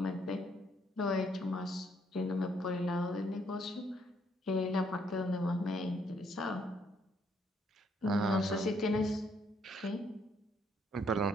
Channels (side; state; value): both; normal; correlation 0.69